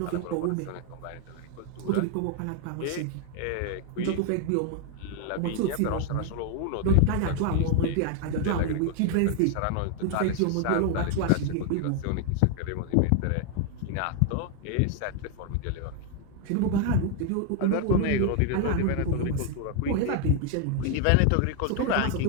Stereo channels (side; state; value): both; different; correlation 0.00